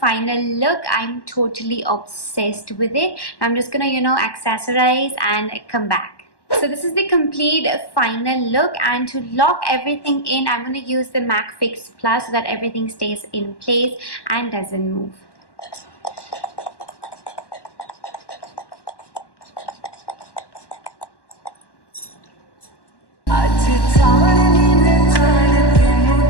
look. I'm totally obsessed with it. I'm just gonna accessorize and come back. So this is the complete final look, and to lock everything in, I'm going to use the MAC Fix Plus so that everything stays in place and doesn't move.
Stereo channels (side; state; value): right; late; 1.1 ms